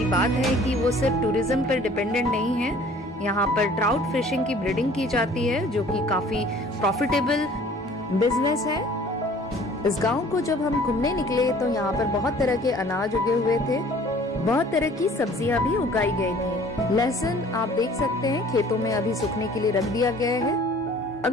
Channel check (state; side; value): normal; both; correlation 0.52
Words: बात है कि वो सिर्फ टूरिज्म पर डिपेंडेंट नहीं है। यहाँ पर ट्राउट फिशिंग की ब्रीडिंग की जाती है जो कि काफी प्रॉफिटेबल बिजनेस है। इस गांव को जब हम घूमने निकले तो यहाँ पर बहुत तरह के अनाज उगे हुए थे, बहुत तरह की सब्जियां भी उगाई गई थी। लहसुन आप देख सकते हैं खेतों में अभी सूखने के लिए रख दिया गया है।